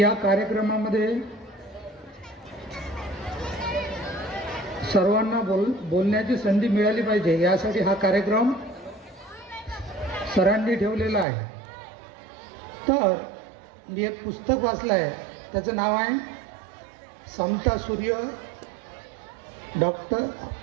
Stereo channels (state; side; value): drops out; left; at 11.2 s